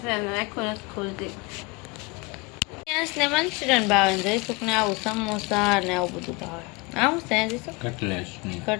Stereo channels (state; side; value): quieter; right; 26.8 dB